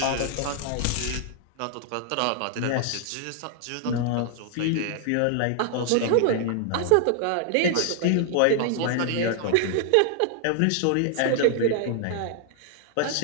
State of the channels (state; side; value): different; both; correlation -0.01